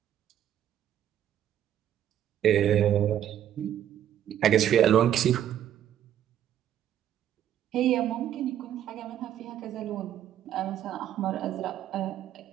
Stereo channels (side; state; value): left; quieter; 10.7 dB